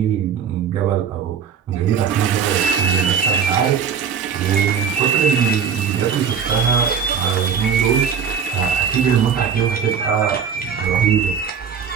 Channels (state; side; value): quieter; left; 7.1 dB